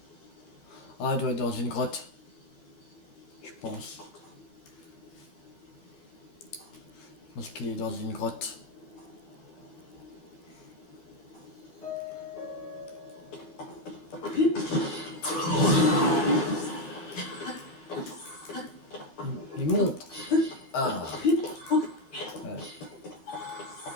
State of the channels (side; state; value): right; late; 13 ms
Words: Ah, il doit être dans une grotte. Je pense. Je pense qu'il est dans une grotte. Il monte. Ah. Ouais.